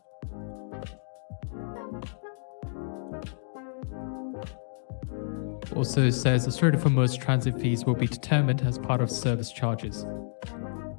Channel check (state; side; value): silent; right; digital silence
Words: Also says the Strait of Hormuz transit fees will be determined as part of service charges.